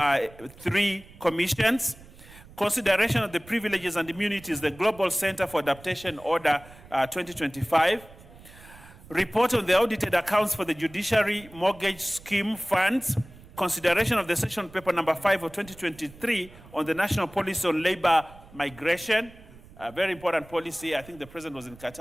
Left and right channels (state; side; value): noise; right; rumble, 21 dB below the sound